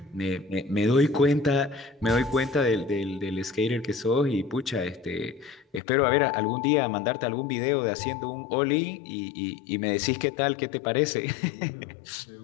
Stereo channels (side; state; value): right; drops out; at 5.8 s